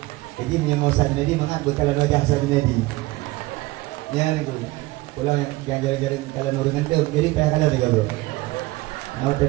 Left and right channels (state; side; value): quieter; left; 20.4 dB